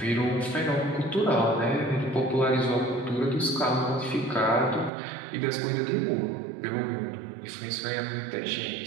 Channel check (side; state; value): left; drops out; at 4.9 s